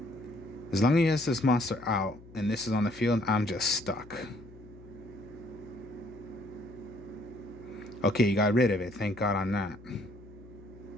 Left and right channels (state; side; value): noise; left; hum, 20 dB below the sound